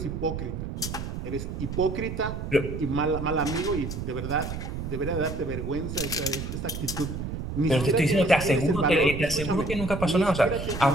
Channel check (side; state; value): right; noise; rumble, 6 dB below the sound